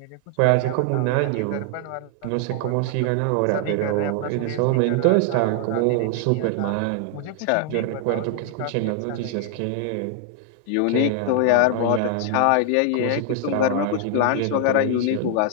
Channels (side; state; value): both; different; correlation 0.00